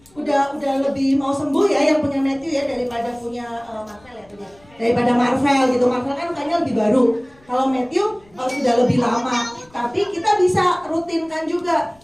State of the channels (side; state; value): left; noise; rumble, 30 dB below the sound